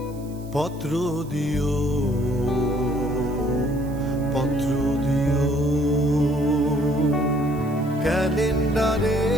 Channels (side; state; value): right; noise; hiss, 24 dB below the sound